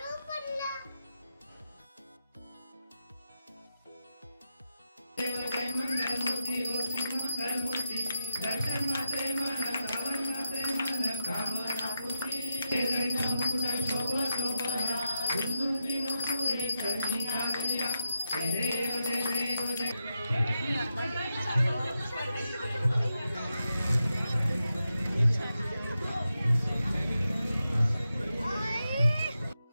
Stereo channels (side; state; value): both; inverted; correlation -0.89